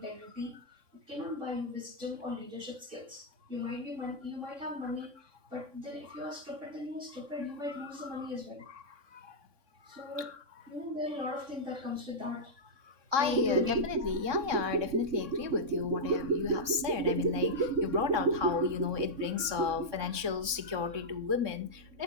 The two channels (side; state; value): left; late; 3.6 ms